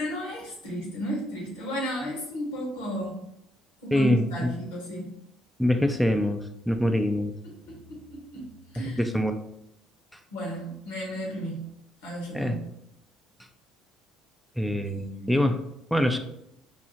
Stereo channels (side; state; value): both; normal; correlation 0.83